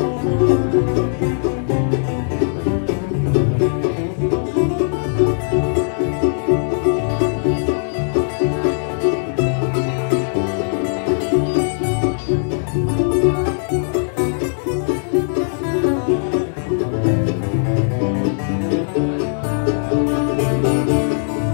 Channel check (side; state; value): right; silent; 64 dB below the other